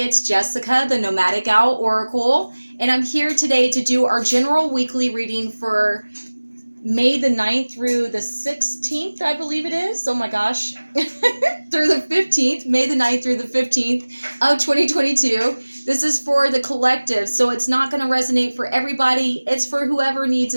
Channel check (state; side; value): inverted; both; correlation -1.00